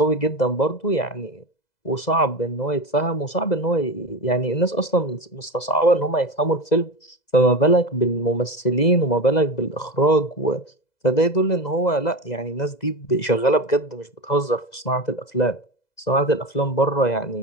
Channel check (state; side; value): late; right; 2.0 ms